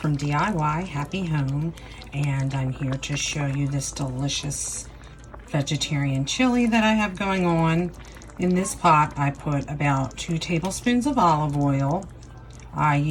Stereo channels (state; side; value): identical; both; correlation 1.00